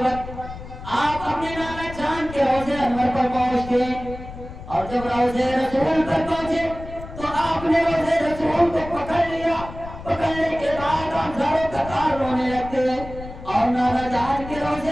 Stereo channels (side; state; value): left; noise; rumble, 13 dB below the sound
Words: وقت آپ اپنے نانا جان کے روضے انور پر پہنچتے ہیں، اور جب روضے رسول پر پہنچے تو آپ نے روضے رسول کو پکڑ لیا۔ پکڑنے کے بعد آپ زاروں قطار رونے لگتے ہیں اور نانا جان کے